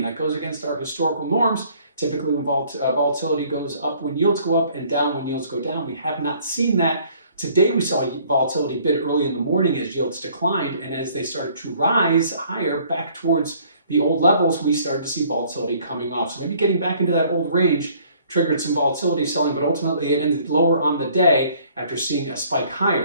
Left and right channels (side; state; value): both; inverted; correlation -0.59